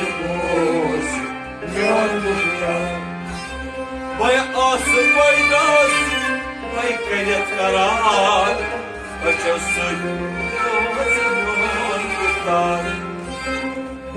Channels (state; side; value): identical; both; correlation 1.00